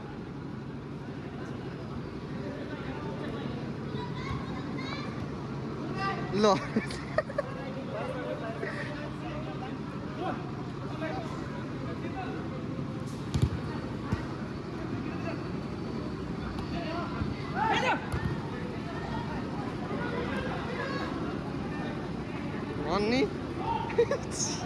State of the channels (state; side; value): identical; both; correlation 1.00